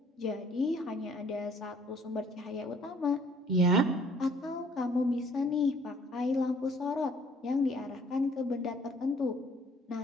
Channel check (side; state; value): both; normal; correlation 0.59